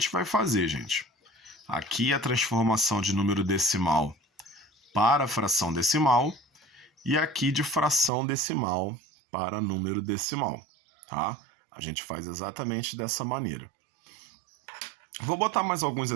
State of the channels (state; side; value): drops out; left; at 8.1 s